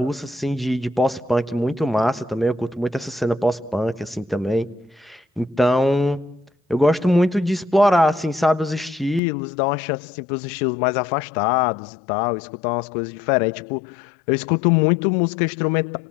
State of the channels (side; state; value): right; drops out; at 9.2 s